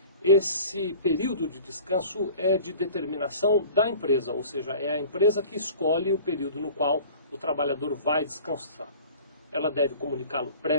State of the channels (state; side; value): inverted; both; correlation -0.44